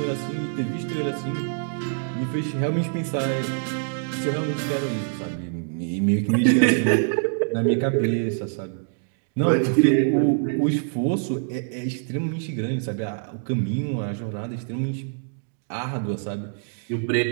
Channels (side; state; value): left; silent; digital silence